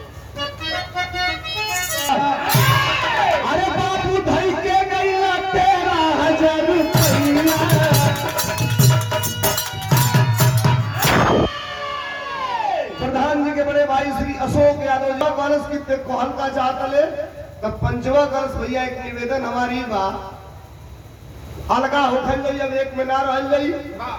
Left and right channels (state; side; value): identical; both; correlation 1.00